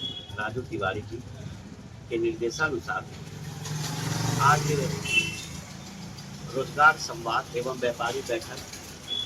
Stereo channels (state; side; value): identical; both; correlation 1.00